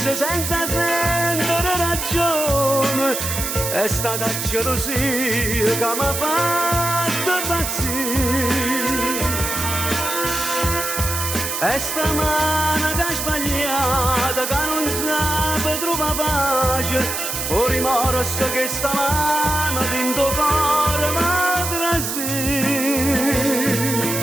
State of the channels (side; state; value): right; noise; hiss, 3 dB below the sound